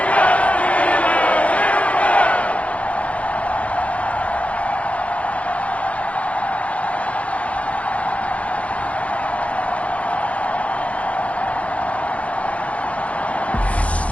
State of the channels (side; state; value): right; late; 0.064 ms